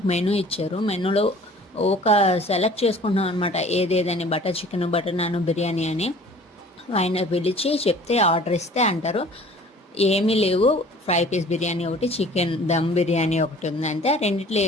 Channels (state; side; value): normal; both; correlation 0.49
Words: మెనూ ఇచ్చారు. మెనూలో ఒక సెలెక్ట్ చేసుకుంటున్నాం అనమాట, ఏదేదని butter chicken, butter non, biryani అని. ఆయన పిలిచి చెప్తే ఆర్డర్ ఇస్తే అంటారు ఏమీ లేవు, ఫ్రై పీస్ బిర్యానీ ఒకటి, చికెన్ దమ్ బిర్యానీ ఒకటి ఉంది, అంతే, రెండిట్లో